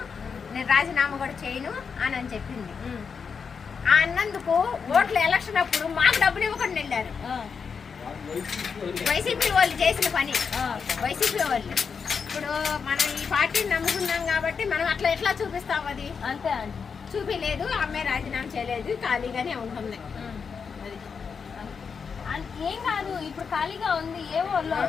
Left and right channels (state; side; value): quieter; right; 5.9 dB